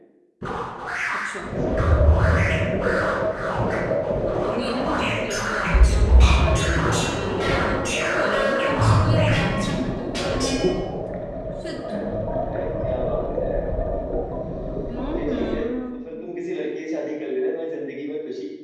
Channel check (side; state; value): both; identical; correlation 1.00